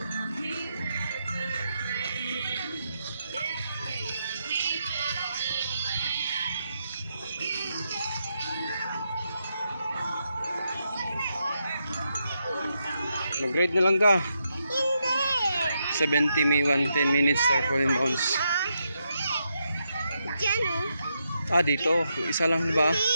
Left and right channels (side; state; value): both; inverted; correlation -0.82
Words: Mag-ride na lang ka. Hindi. 70 may 110 minutes tarpaulin bounce. Dyan o. Ah, dito. Isa lang ba?